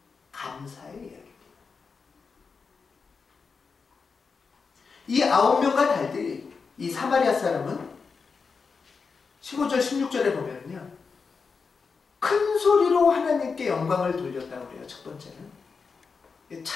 감사의 이야기입니다. 이 9명과 달리 이 사마리아 사람은 15절 16절에 보면요 큰 소리로 하나님께 영광을 돌렸다고 그래요. 첫 번째는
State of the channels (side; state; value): right; quieter; 5.1 dB